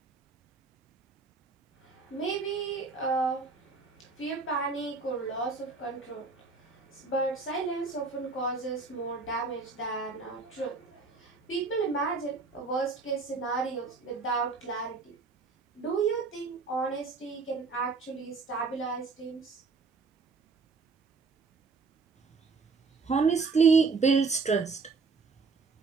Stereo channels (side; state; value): left; quieter; 4.4 dB